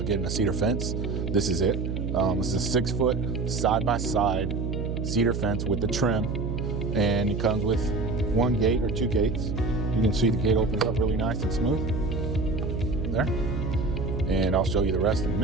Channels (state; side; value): noise; right; hum, 2 dB below the sound